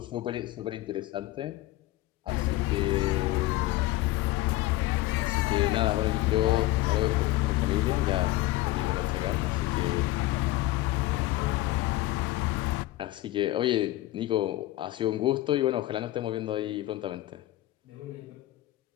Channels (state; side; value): quieter; right; 17.1 dB